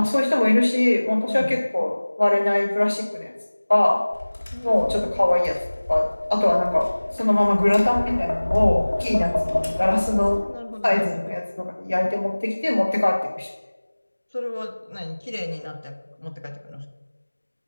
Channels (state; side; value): inverted; both; correlation -1.00